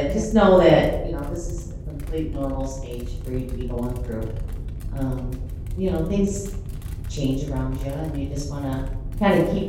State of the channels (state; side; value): identical; both; correlation 1.00